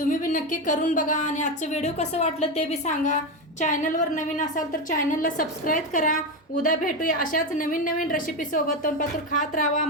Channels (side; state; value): both; normal; correlation 0.14